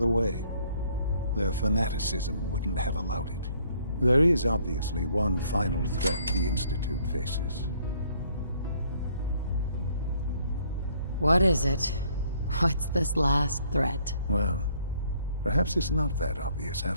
way. Their fanaticism wouldn't have allowed it. There is obviously one final threat the Institute faces. What is it? What's this last threat? Well, perhaps it's not that obvious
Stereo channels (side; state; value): both; inverted; correlation -0.64